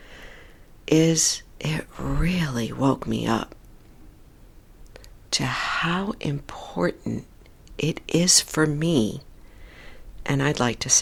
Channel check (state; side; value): identical; both; correlation 1.00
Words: is it really woke me up to how important it is for me, and I'd like to